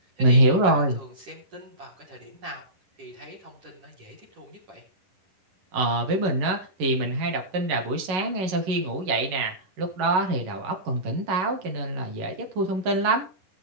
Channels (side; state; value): left; late; 11 ms